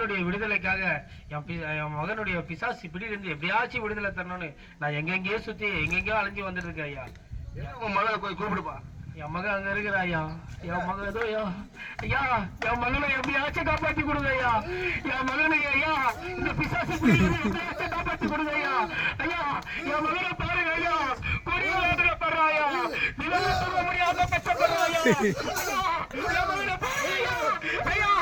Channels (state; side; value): identical; both; correlation 1.00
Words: விடுதலைக்காக என் மகனுடைய பிசாசு பிடியிலிருந்து எப்படியாச்சும் விடுதலை தரணும்னு நான் எங்கெங்கேயோ சுத்தி எங்கெங்கயோ அலைஞ்சு வந்துட்டு இருக்கேன் ஐயா. உன் மகளை போய் கூப்பிடுப்பா. என் மகன் அங்க இருக்கிற ஐயா. என் மகன் ஏதோ ஐயா என் மகனை எப்படியாச்சும் காப்பாத்தி கொடுங்க ஐயா. என் மகனை ஐயா இந்த பிசாசு எப்படியாச்சும் காப்பாத்தி கொடுங்க ஐயா. ஐயா என் மகனை பாருங்க ஐயா, கொடிய வேதனைப்படுறா ஐயா, நிலவு சொல்ல முடியாத கஷ்டப்படுறா ஐயா. என் மகனை பாருங்க ஐயா. ஐயா